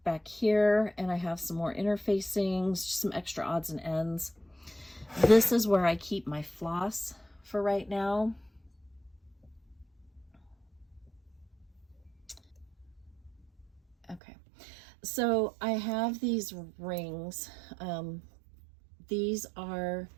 back here, and I have some more interfacings, just some extra odds and ends. This is where I keep my floss for right now. Okay, so I have these rings. These are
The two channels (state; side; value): drops out; left; at 14.2 s